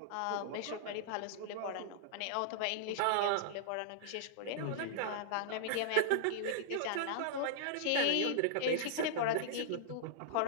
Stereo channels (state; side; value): different; both; correlation -0.01